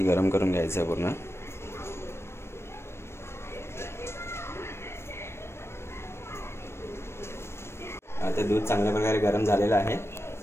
गरम करून घ्यायचं आहे पूर्ण। आता दूध चांगल्या प्रकारे गरम झालेलं आहे।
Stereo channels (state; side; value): late; right; 0.12 ms